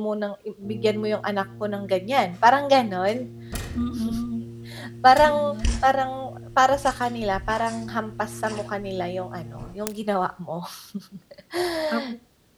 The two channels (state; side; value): identical; both; correlation 1.00